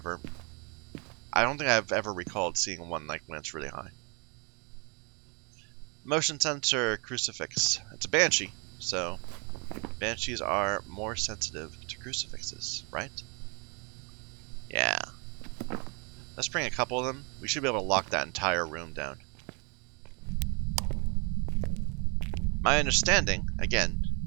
ever recalled seeing one like when it's really high. Motion sensor crucifix. It's a Banshee, so Banshees are more sensitive to crucifixes, right? Yeah. Let's bring a couple of them. We should be able to lock that entire room down. My understanding, again,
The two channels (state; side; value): quieter; left; 33.3 dB